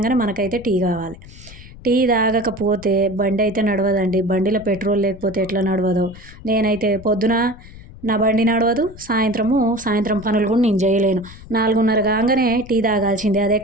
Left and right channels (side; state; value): left; noise; rumble, 18 dB below the sound